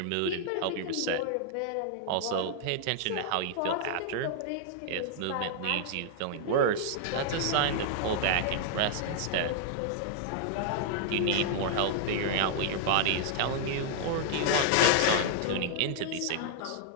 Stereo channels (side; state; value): both; different; correlation 0.00